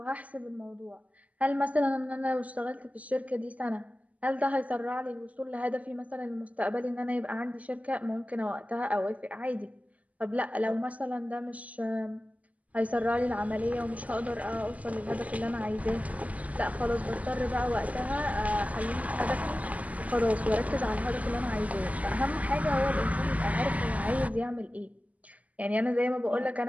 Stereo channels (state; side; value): late; left; 0.074 ms